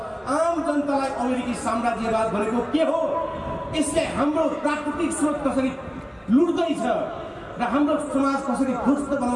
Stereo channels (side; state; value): both; identical; correlation 1.00